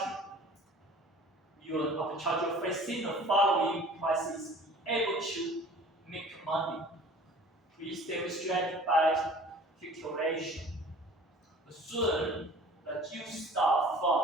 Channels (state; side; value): normal; both; correlation 0.46